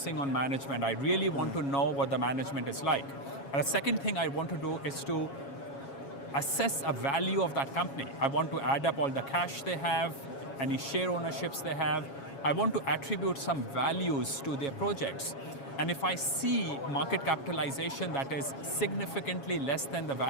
on management. I really want to know what the management is like. And the second thing I want to do is to assess a value of that company. I want to add up all the cash they have, any share ownerships they have. I want to attribute some values to their projects. And if I see market capitalization that is significantly less than the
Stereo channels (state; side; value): late; right; 7.3 ms